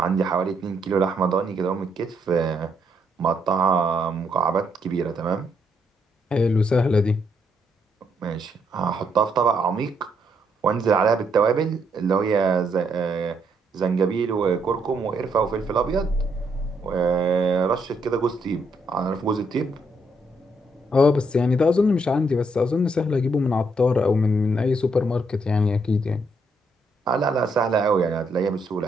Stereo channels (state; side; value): normal; both; correlation 0.74